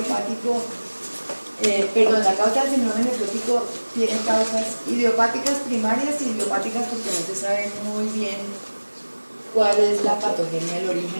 la causa del síndrome nefrótico tiene causas idiopáticas primarias y idiopáticas porque no se sabe muy bien cuál es la patogenia, el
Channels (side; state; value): both; inverted; correlation -1.00